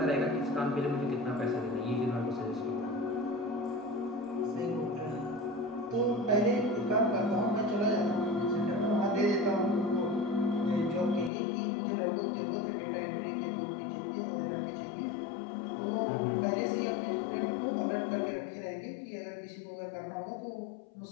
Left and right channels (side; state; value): right; drops out; at 11.3 s